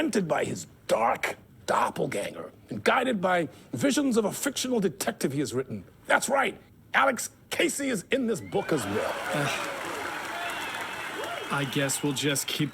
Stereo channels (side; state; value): both; identical; correlation 1.00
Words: by his dark doppelganger and guided by visions of a fictional detective he has written. That's right, Alex Casey is in this book as well. I guess we'll just keep